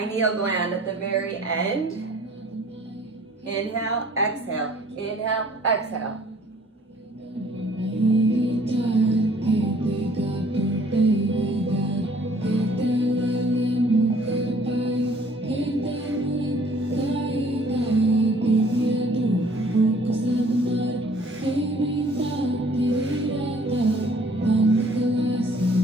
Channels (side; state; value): both; normal; correlation 0.56